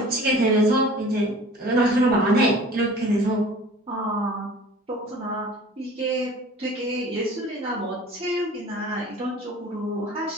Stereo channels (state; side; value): normal; both; correlation 0.45